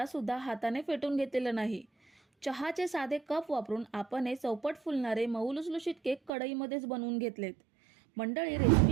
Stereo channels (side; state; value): left; drops out; at 6.3 s